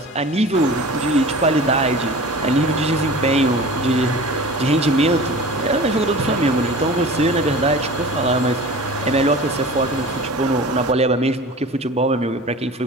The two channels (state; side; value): normal; both; correlation 0.38